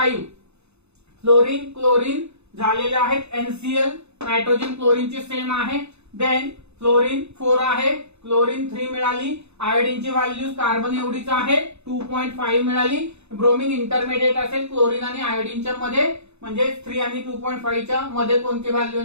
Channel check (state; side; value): late; left; 0.81 ms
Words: फ्लोरीन, क्लोरीन झालेले आहेत NCl, नायट्रोजन क्लोरीनची सेम आहे. देन फ्लोरीन 4 आहे, क्लोरीन 3 मिळाली. आयोडीनची व्हॅल्यू कार्बन एवढीच आहे 2.5 मिळाली. ब्रोमिन इंटरमिडिएट असेल क्लोरीन आणि आयोडीनच्या मध्ये, म्हणजे 3 आणि 2.5 च्या मध्ये कोणती व्हॅल्यू